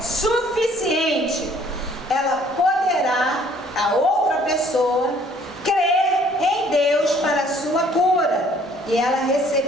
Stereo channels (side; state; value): both; normal; correlation 0.59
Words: suficiente, ela poderá, a outra pessoa, crer em Deus para a sua cura. E ela